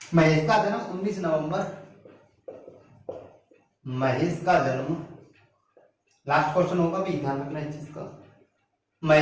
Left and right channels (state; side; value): identical; both; correlation 1.00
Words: महेश का जन्म 19 नवंबर, महेश का जन्म, लास्ट क्वेश्चन होगा भी, ध्यान रखना इस चीज का।